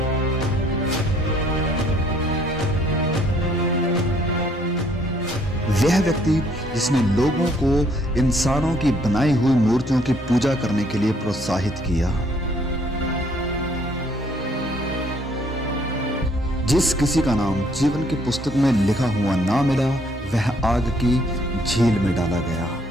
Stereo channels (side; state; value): both; normal; correlation 0.64